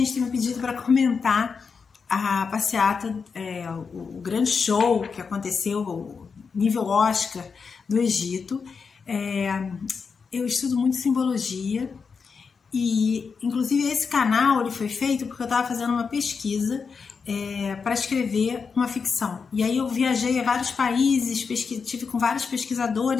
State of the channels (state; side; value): quieter; right; 5.5 dB